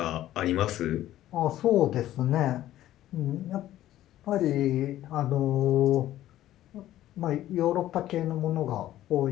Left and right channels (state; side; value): quieter; right; 13.6 dB